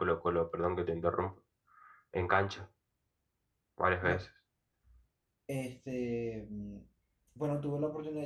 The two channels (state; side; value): identical; both; correlation 1.00